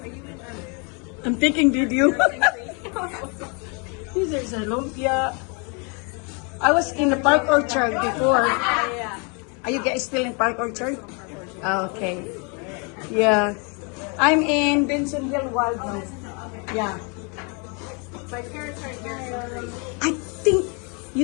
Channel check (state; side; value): quieter; right; 34.5 dB